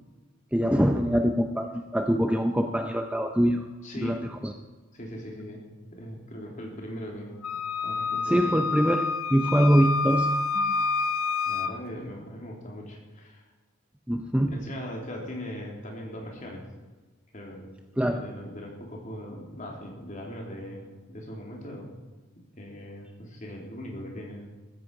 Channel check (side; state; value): both; normal; correlation 0.85